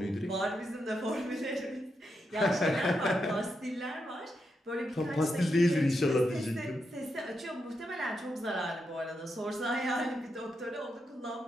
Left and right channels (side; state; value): both; normal; correlation 0.84